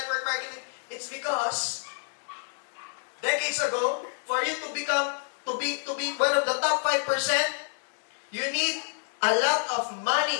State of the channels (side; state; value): right; silent; 59 dB below the other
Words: marketing. It's because decades ago, for you to become to be one of the top 5%, you need a lot of